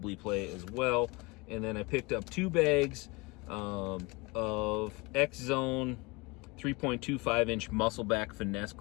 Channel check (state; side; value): quieter; right; 26.1 dB